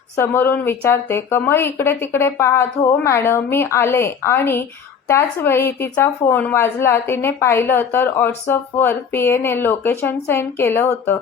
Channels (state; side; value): quieter; right; 6.7 dB